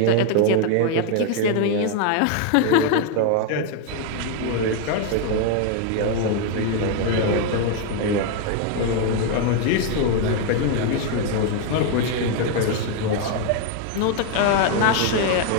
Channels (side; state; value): both; different; correlation 0.01